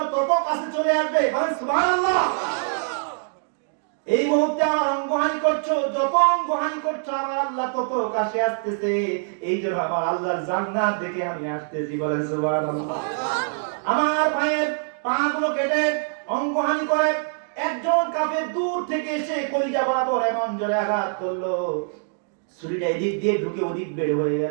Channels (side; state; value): left; silent; digital silence